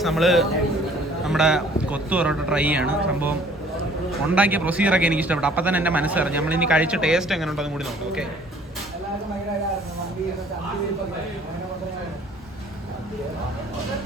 നമ്മൾ നമ്മുടെ കൊത്തു പൊറോട്ട ട്രൈ ചെയ്യാണ്. സംഭവം ഉണ്ടാക്കിയ പ്രൊസീജിയറൊക്കെ എനിക്ക് ഇഷ്ടപ്പെട്ടു. അപ്പം തന്നെ എൻ്റെ മനസ്സറിഞ്ഞു. നമ്മളിനി കഴിച്ച ടേസ്റ്റ് എങ്ങനെ ഉണ്ടെന്ന് കൂടി നോക്കാം. ഓക്കെ,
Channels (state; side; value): normal; both; correlation 0.55